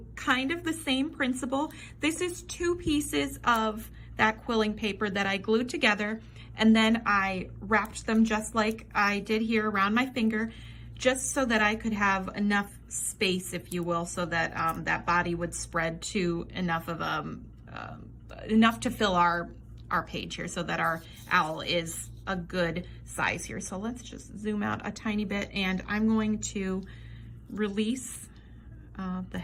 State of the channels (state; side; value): identical; both; correlation 1.00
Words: kind of the same principle. This is two pieces of that quilling paper that I glued together, and then I wrapped them just like I did here around my finger, just so that I could have enough space, if you will, so that that body would spread to enough of enough to fill our page here so that our owl is a good size here. So let's just zoom out a tiny bit, and I'm going to release the